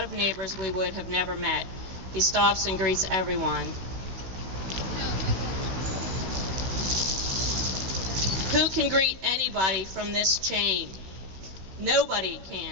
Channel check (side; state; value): left; late; 16 ms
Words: of neighbors we would have never met. He stops and greets everyone. Who can greet anybody from this chain? Nobody